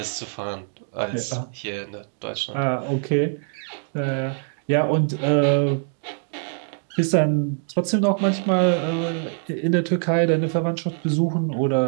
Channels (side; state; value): left; silent; 59 dB below the other